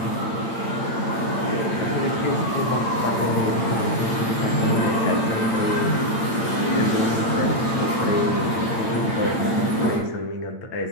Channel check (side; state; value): right; late; 8.8 ms